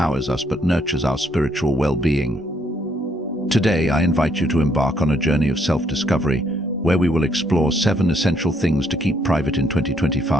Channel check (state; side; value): normal; both; correlation 0.71